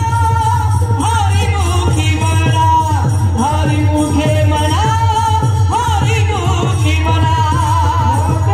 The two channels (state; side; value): identical; both; correlation 1.00